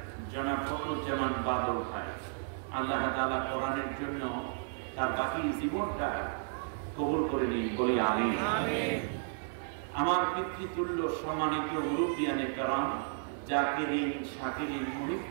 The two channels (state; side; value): silent; left; 56 dB below the other